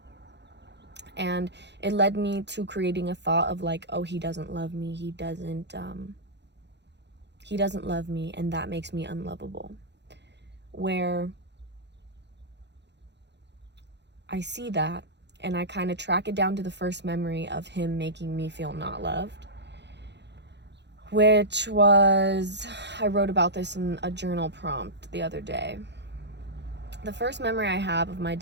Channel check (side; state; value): left; late; 0.50 ms